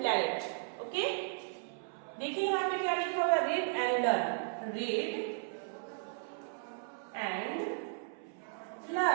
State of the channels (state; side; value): silent; left; 54 dB below the other